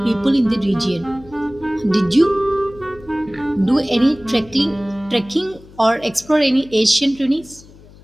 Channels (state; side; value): noise; left; hum, 23 dB below the sound